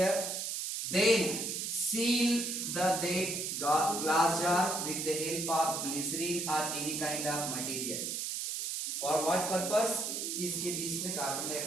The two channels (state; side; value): noise; right; hiss, 3 dB below the sound